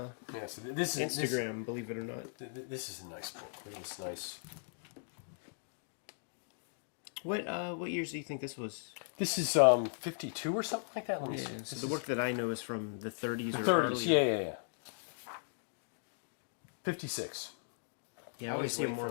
Yeah, so this is Instagram, believe it or not. This is a nice book. Look at this nice. What years do you think this was? This is 52 or something like that. Let me see. So This the is work that I know is from the 30s. the or 30s. early. Yeah. 56. I always see wait more. for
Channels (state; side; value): silent; right; digital silence